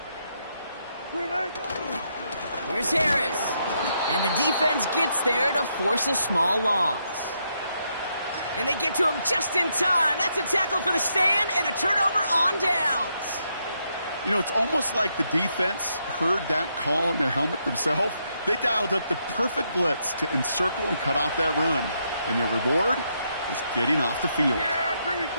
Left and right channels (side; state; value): both; inverted; correlation -0.78